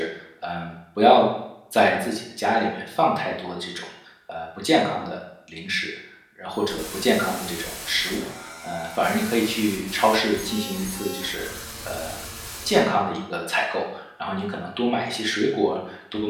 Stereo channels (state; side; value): identical; both; correlation 1.00